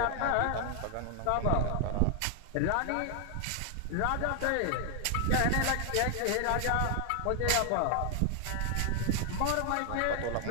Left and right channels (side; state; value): both; different; correlation 0.00